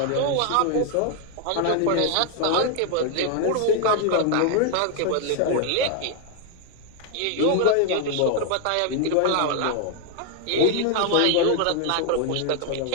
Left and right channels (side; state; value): both; different; correlation 0.00